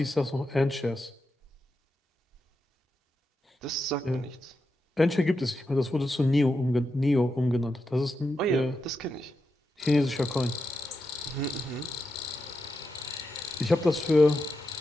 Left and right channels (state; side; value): normal; both; correlation 0.87